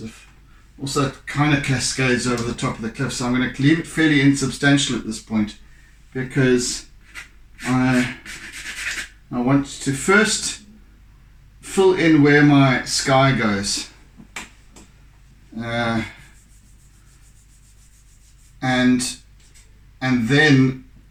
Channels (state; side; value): identical; both; correlation 1.00